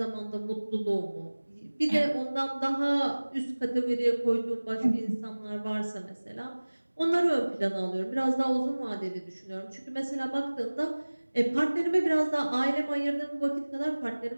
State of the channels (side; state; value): both; inverted; correlation -1.00